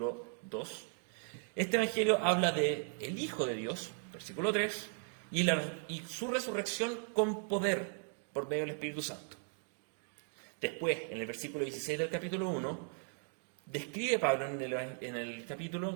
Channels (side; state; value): left; silent; 53 dB below the other